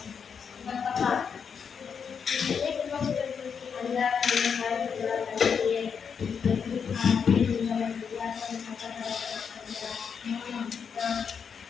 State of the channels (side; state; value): right; quieter; 6.6 dB